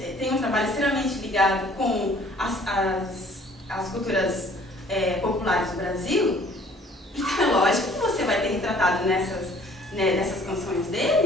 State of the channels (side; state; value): both; normal; correlation 0.56